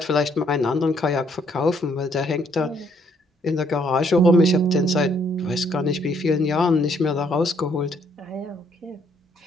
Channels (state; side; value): normal; both; correlation 0.68